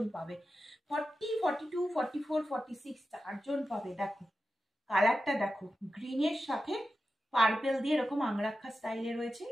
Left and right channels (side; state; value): both; normal; correlation 0.92